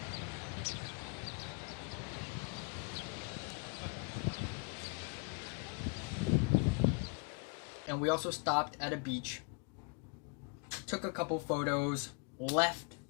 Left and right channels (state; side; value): quieter; right; 33.7 dB